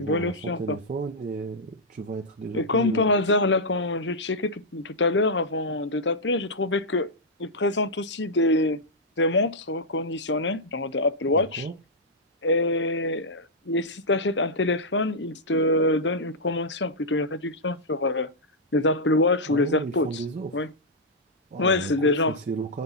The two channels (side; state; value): both; normal; correlation -0.09